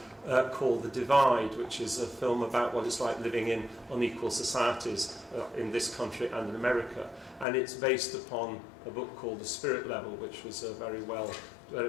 called The Divide, which is a film about what it's like living in unequal societies in this country and in America. And it's based upon a book called The Spirit Level, which was a very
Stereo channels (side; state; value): right; drops out; at 7.5 s